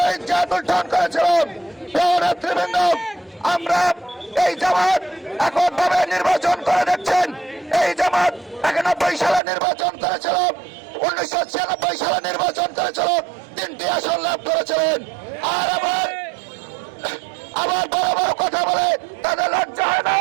ইজ্জত লুণ্ঠন করেছিল। নেতৃবৃন্দ, আমরা এই জামাত এখন ভাবে নির্বাচন করে দেখছেন। এই জামাত 91 সালে নির্বাচন করেছিল, 1996 সালে নির্বাচন করেছিল, 3টি আসন লাভ করেছিলেন। আর আবার বড় বড় কথা বলে তাদের লজ্জা হয় না?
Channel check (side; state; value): left; drops out; at 9.4 s